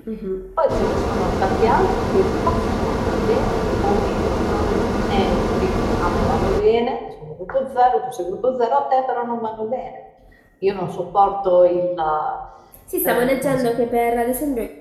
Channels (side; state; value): both; identical; correlation 1.00